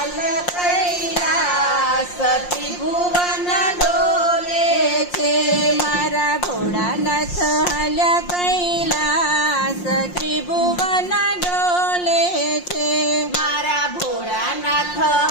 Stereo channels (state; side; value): late; right; 5.6 ms